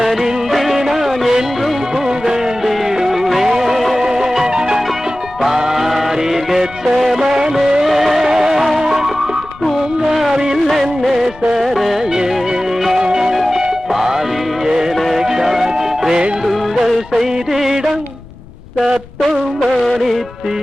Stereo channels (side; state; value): left; noise; rumble, 20 dB below the sound